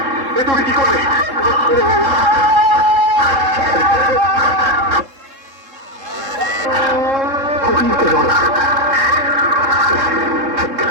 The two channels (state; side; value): late; left; 3.7 ms